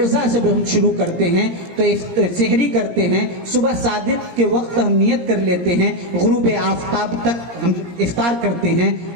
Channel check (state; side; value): late; left; 17 ms